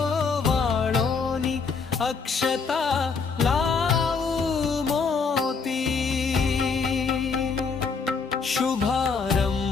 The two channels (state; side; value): quieter; right; 5.2 dB